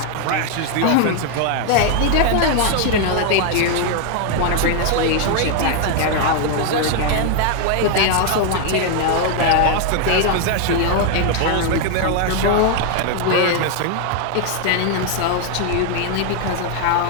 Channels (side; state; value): both; different; correlation 0.00